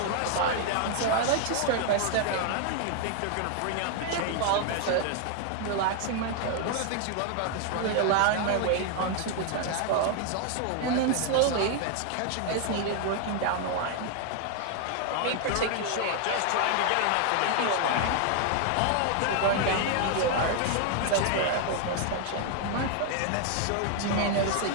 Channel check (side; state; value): both; different; correlation 0.00